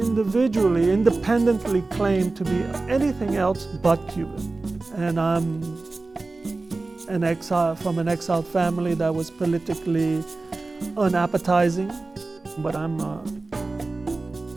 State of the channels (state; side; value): quieter; left; 3.4 dB